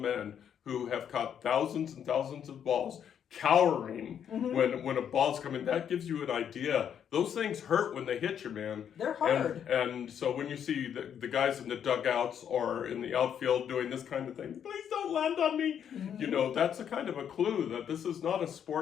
who have caught thousands and thousands of balls cowering when a ball's coming, that gives you an idea. Those things hurt when they hit you, man. They're hard. And so when you see the guys in the dugouts or in the outfield doing this kind of thing, please don't land on me. That's a kind of a clue that this is not a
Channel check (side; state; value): right; quieter; 8.7 dB